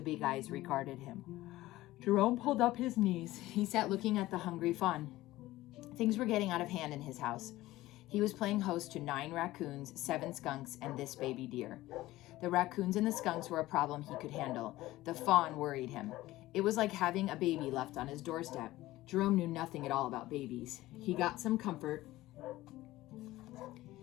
big eyes regarded him. Jerome pulled up his knees. He sat looking at the hungry fawn. Things were getting out of hand in his house. He was playing host to 9 raccoons, 7 skunks, and this baby deer. The raccoons and the skunks were a problem he could handle. The fawn worried him. It was like having a baby left on his doorstep. Jerome knew nothing at all about babies. He got some comfort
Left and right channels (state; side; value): quieter; right; 16.9 dB